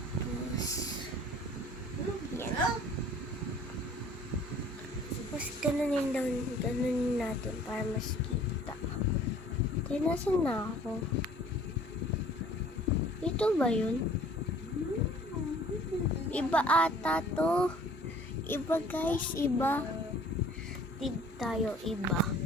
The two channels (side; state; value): both; normal; correlation 0.52